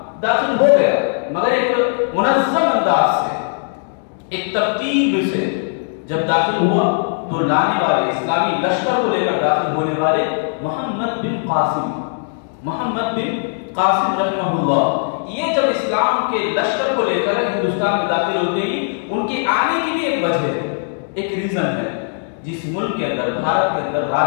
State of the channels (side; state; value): right; silent; digital silence